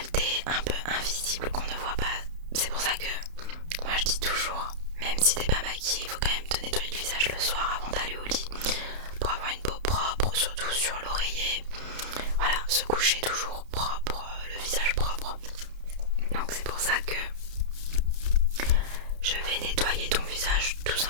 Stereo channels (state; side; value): late; left; 31 ms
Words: un peu invisibles qu'on ne voit pas. C'est pour ça que moi je dis toujours, même si t'es pas maquillée, il faut quand même te nettoyer le visage le soir avant d'aller au lit pour avoir une peau propre, surtout sur l'oreiller. Voilà, se coucher toujours propre, le visage propre. Donc c'est pour ça que je vais nettoyer ton visage tout